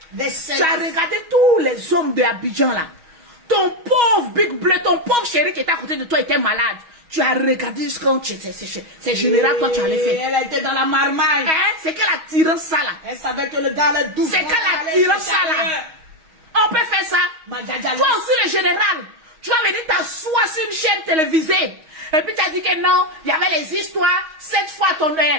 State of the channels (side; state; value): left; late; 6.3 ms